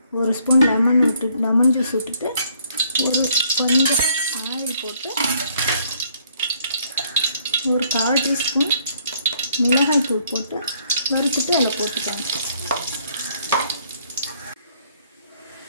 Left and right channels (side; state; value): both; inverted; correlation -0.66